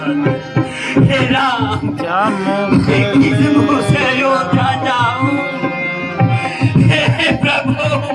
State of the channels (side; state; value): both; identical; correlation 1.00